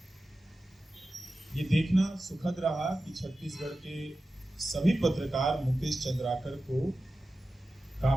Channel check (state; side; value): normal; both; correlation 0.94